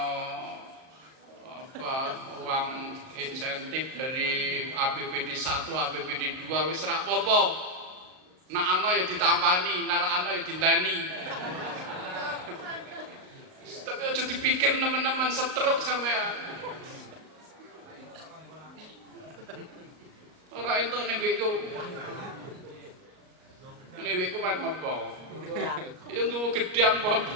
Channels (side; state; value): left; late; 38 ms